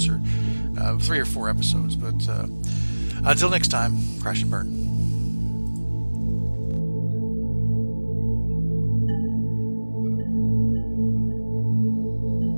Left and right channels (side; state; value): both; inverted; correlation -1.00